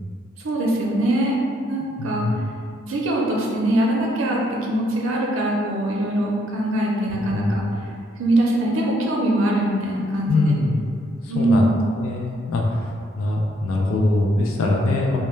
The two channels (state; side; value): normal; both; correlation 0.72